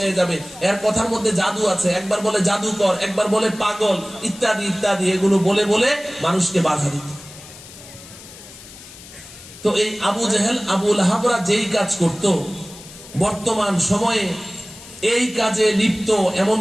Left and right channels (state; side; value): noise; left; hiss, 18 dB below the sound